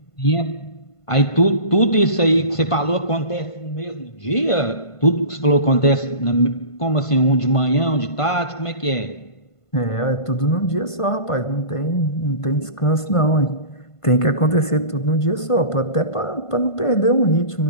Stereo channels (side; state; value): right; late; 1.5 ms